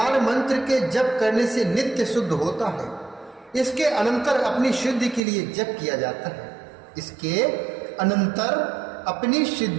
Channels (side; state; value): left; drops out; at 5.2 s